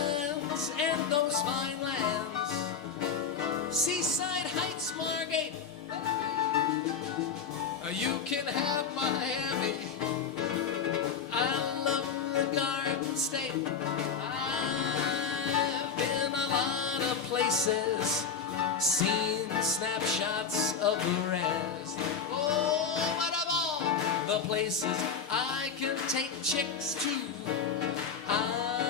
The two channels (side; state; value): right; quieter; 6.3 dB